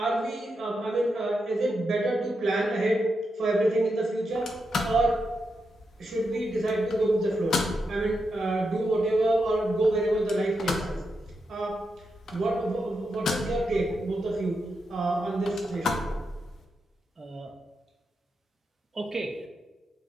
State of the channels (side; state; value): both; normal; correlation 0.85